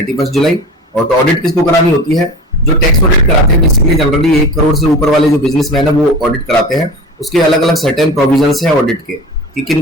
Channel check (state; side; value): normal; both; correlation 0.34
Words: जुलाई। और तो ऑडिट किसको करानी होती है? जो टैक्स ऑडिट कराते हैं बेसिकली जनरली 1 करोड़ से ऊपर वाले जो बिजनेसमैन है वो ऑडिट कराते हैं। उसके अलग अलग सर्टेन प्रोविजंस है ऑडिट के कि किन